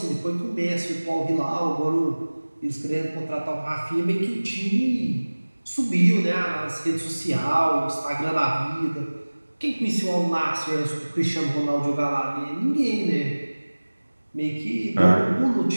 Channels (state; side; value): inverted; both; correlation -1.00